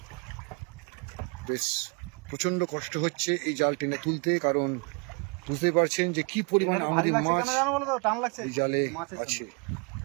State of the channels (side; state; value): left; quieter; 34.1 dB